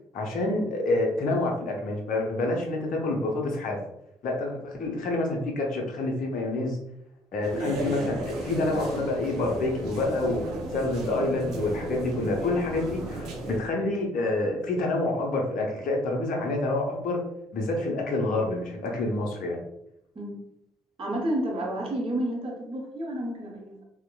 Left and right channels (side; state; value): both; normal; correlation 0.56